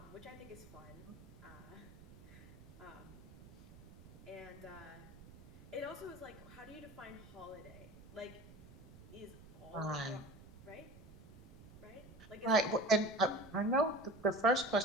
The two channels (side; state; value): right; noise; rumble, 18 dB below the sound